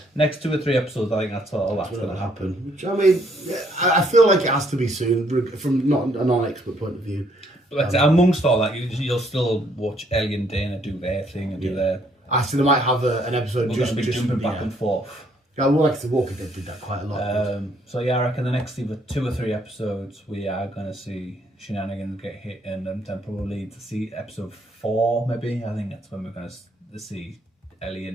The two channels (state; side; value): normal; both; correlation 0.68